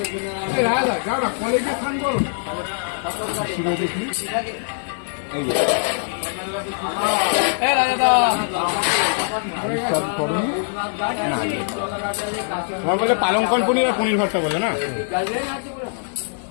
তোমার বলে পালংকন পনির আর পনির ভর্তা বলে না?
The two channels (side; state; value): right; silent; digital silence